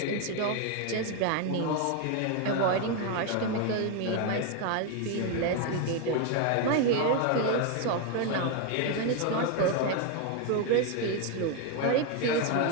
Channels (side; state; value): both; different; correlation 0.01